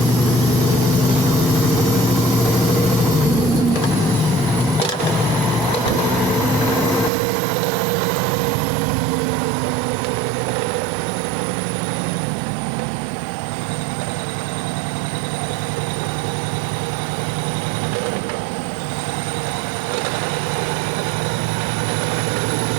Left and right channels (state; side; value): drops out; left; at 7.1 s